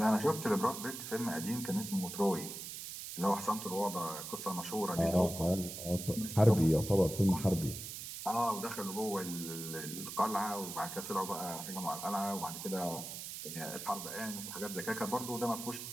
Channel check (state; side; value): noise; right; hiss, 8 dB below the sound